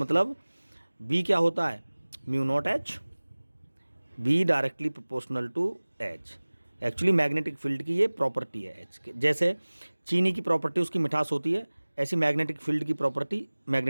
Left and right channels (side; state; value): both; inverted; correlation -1.00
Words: बी क्या होता है, mu not H, B directly proportional to H. Actually magnetic field की ये प्रॉपर्टी है एच के। जैसे चीनी की प्रॉपर्टी उसकी मिठास होती है, ऐसी मैग्नेटिक फील्ड की प्रॉपर्टी